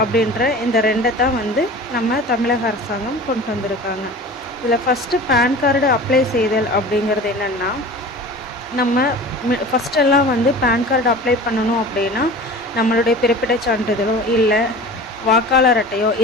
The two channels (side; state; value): both; normal; correlation 0.38